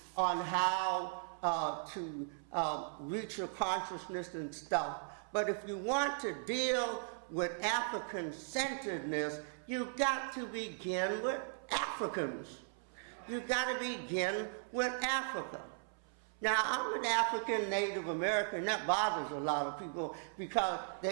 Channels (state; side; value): silent; left; 53 dB below the other